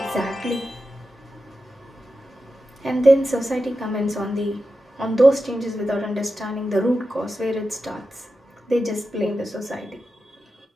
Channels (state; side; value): normal; both; correlation 0.91